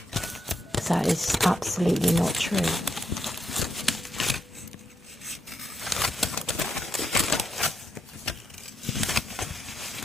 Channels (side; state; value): both; normal; correlation 0.79